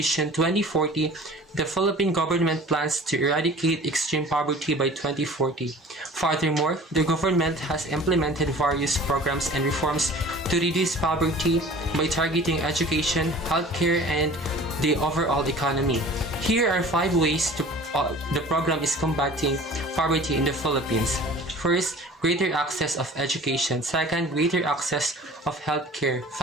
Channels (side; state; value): both; normal; correlation 0.44